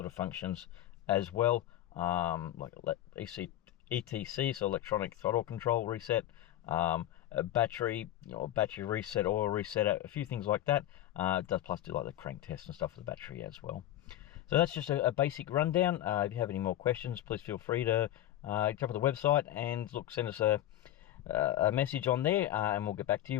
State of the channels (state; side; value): quieter; right; 13.2 dB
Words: of functions as well, like ETC, so electronic throttle control reset, a battery, battery reset, oil reset, a few things like that. It does plus do like the crank test and stuff for the battery as well. So that's just a basic rundown. If you have any more questions, please feel free to jump on the website and send us a message on there, and we'll get back to